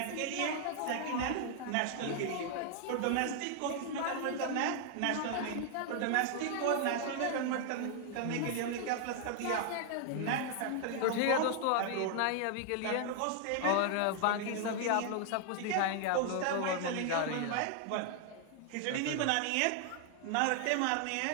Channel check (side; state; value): both; different; correlation 0.00